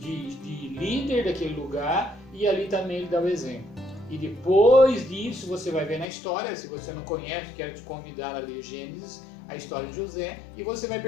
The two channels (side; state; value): right; drops out; at 6.1 s